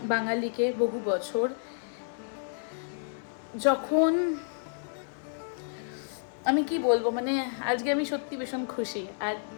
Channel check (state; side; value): silent; right; 57 dB below the other